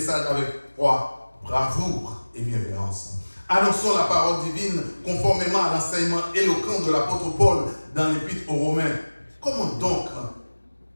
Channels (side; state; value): both; inverted; correlation -1.00